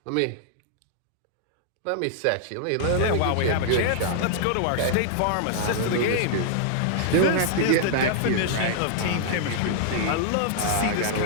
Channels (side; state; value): both; different; correlation -0.01